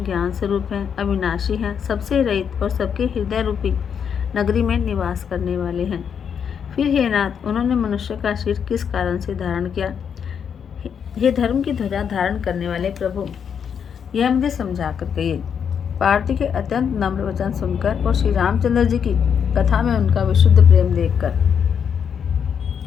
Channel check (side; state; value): right; quieter; 7.5 dB